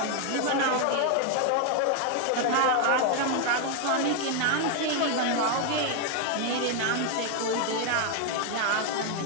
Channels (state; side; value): different; both; correlation 0.01